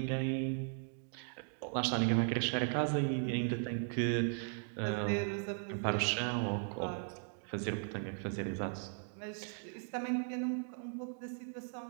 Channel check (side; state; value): left; silent; 53 dB below the other